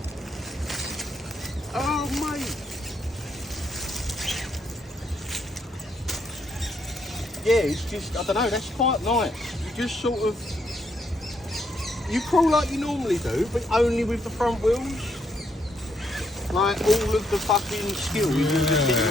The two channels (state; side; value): normal; both; correlation 0.74